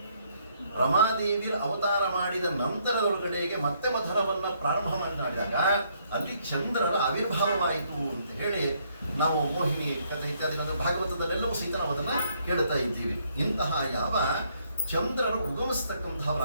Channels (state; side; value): inverted; both; correlation -0.70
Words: ರಮಾದೇವಿಯ ಅವತಾರ ಮಾಡಿದ ನಂತರದೊಳಗಡೆಗೆ ಮತ್ತೆ ಮಥನವನ್ನ ಪ್ರಾರಂಭ ಮಾಡಿದಾಗ ಅಲ್ಲಿ ಚಂದ್ರರ ಆವಿರ್ಭಾವವಾಯಿತು ಅಂತ ಹೇಳಿ ನಾವು ಮೋಹಿನಿ ಕಥೆ ಇತ್ಯಾದಿ ಭಾಗವತದಲ್ಲೆಲ್ಲವೂ ಸಹಿತ ನಾವು ಅದನ್ನ ಕೇಳ್ತಾ ಇದ್ದೀವಿ. ಇಂತಹ ಯಾವ ಚಂದ್ರರು